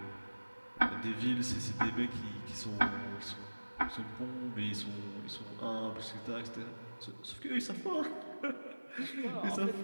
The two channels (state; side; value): inverted; both; correlation -1.00